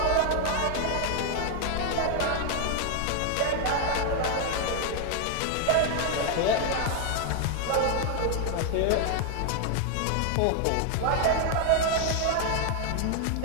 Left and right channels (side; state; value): both; different; correlation 0.00